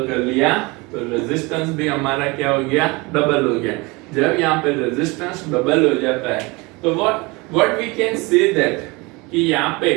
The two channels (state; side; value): quieter; left; 24.9 dB